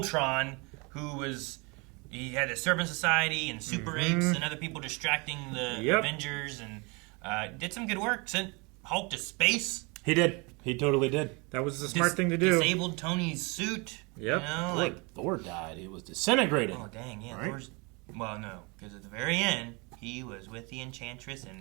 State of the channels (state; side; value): quieter; left; 29.2 dB